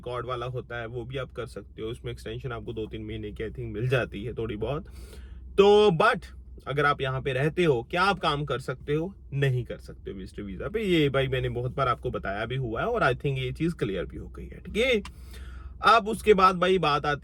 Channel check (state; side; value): identical; both; correlation 1.00